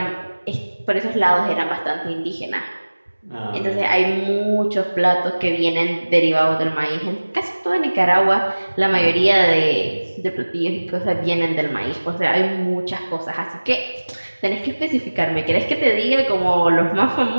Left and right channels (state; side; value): inverted; both; correlation -1.00